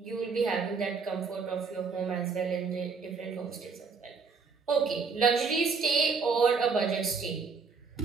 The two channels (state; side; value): quieter; left; 5.1 dB